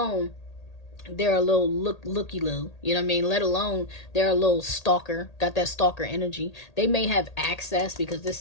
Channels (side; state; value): right; late; 1.8 ms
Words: they're a little looky-loo, you know what I mean? Let alone they're a little stalker, got that stalker energy. They may have access because this